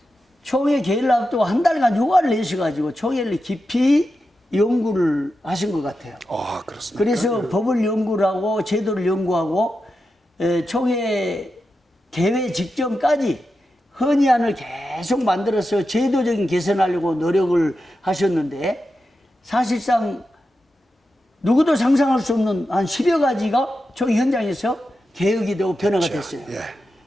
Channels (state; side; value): normal; both; correlation 0.90